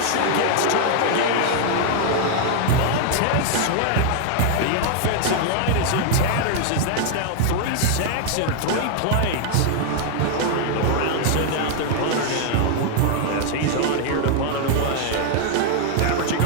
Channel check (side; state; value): both; different; correlation 0.00